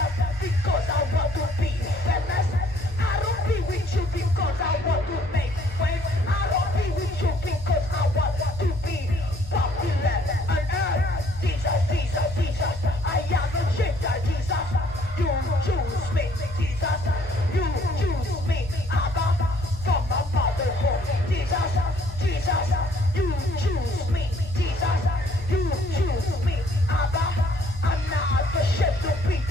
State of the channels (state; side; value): normal; both; correlation 0.62